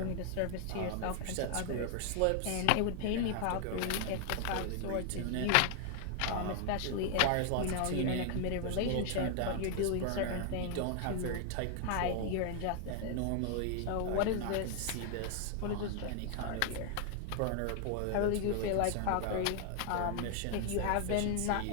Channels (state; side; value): different; both; correlation 0.00